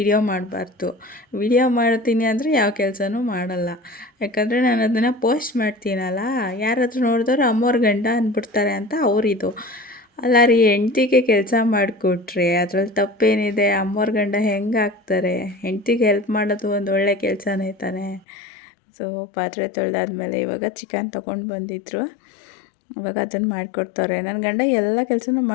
ಮಾಡಬಾರ್ದು. ವೀಡಿಯೋ ಮಾಡ್ತೀನಿ ಅಂದರೆ ಯಾವ ಕೆಲಸನೂ ಮಾಡಲ್ಲ. ಯಾಕಂದರೆ ನಾನು ಅದನ್ನು ಪೋಸ್ಟ್ ಮಾಡ್ತೀನಲ್ಲ, ಯಾರಾದರೂ ನೋಡಿದವ್ರು ಅಮ್ಮೋರ ಗಂಡ ಅಂದ್ಬಿಡ್ತಾರೆ ಅಂತ ಅವರಿದು. ಅಲ್ಲ ರೀ, ಹೆಂಡ್ತಿಗೆ ಕೆಲಸ ಮಾಡಿಕೊಟ್ರೆ ಅದ್ರಲ್ಲಿ ತಪ್ಪೇನಿದೆ? ಅಮ್ಮೋರ ಗಂಡ ಹೆಂಗೆ ಆಗ್ತಾರೆ? ಹೆಂಡ್ತಿಗೆ ಹೆಲ್ಪ್ ಮಾಡೋದು ಒಂದು ಒಳ್ಳೆ ಕೆಲಸನೇ ತಾನೇ. ಸೊ ಪಾತ್ರೆ ತೊಳೆದಾದ್ಮೇಲೆ ಇವಾಗ ಚಿಕನ್ ತೊಗೊಂಡು ಬಂದಿದ್ದರು. ಇವಾಗ ಅದನ್ನು ಮಾಡಿಕೊಡ್ತಾರೆ. ನನ್ನ ಗಂಡ ಎಲ್ಲ ಕೆಲಸನೂ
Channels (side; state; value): right; drops out; at 18.2 s